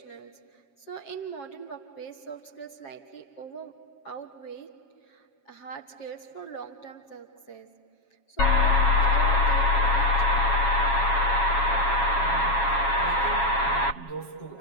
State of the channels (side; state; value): right; late; 7.3 ms